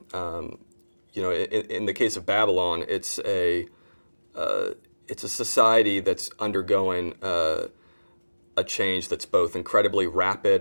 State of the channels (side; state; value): both; inverted; correlation -1.00